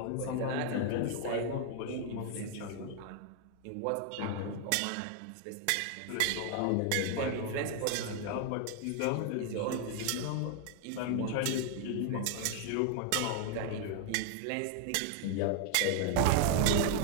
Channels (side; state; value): both; different; correlation 0.00